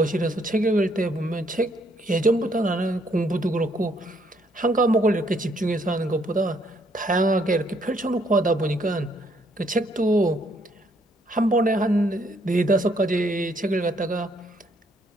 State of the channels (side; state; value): both; normal; correlation 0.69